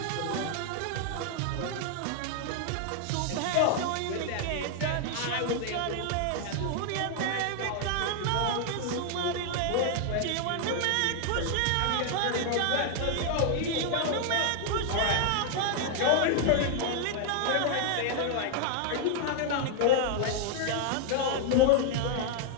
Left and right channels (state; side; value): different; both; correlation 0.00